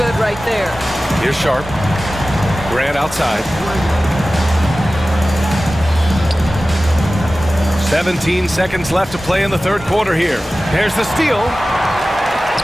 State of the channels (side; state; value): both; normal; correlation 0.96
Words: right there. Here's Sharp. Grant outside. 17 seconds left to play in the third quarter here. There's the steal.